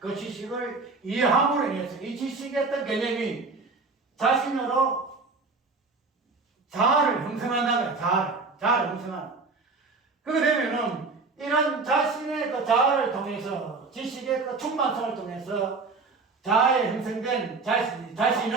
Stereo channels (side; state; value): left; quieter; 4.0 dB